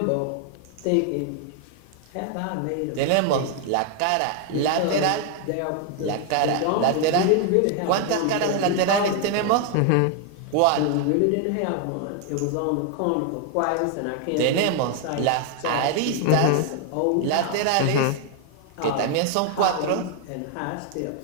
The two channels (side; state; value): both; different; correlation 0.00